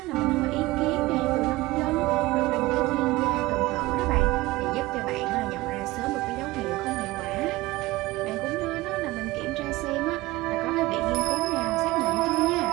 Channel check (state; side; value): quieter; left; 19.6 dB